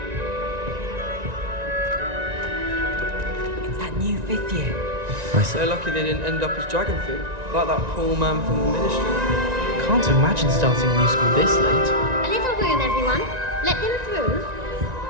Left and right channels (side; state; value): left; late; 1.9 ms